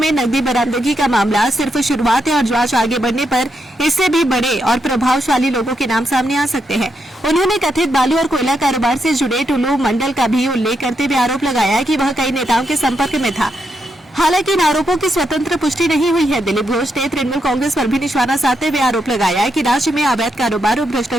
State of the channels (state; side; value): normal; both; correlation 0.81